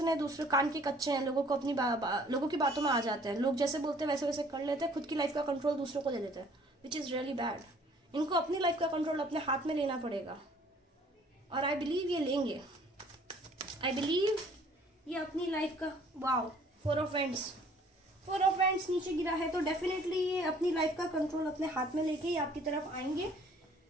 है, दूसरे कान के कच्चे हैं, लोगों को अपनी लोगों की बातों में आ जाते हैं, लोग जैसे बोलते हैं वैसे वैसे कर लेते हैं, खुद की लाइफ का कंट्रोल दूसरों को दे देते हैं, विच इज़ रियली बैड। इनको अपनी लाइफ का कंट्रोल अपने हाथ में लेना पड़ेगा, और आई बिलीव ये लेंगे। आई बिलीव ये अपनी लाइफ का, वाओ, 4 ऑफ Wands नीचे गिरा है, तो डेफिनेटली ये अपनी लाइफ का कंट्रोल अपने हाथ में लेके ही आपकी तरफ आएंगे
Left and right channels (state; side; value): normal; both; correlation 0.56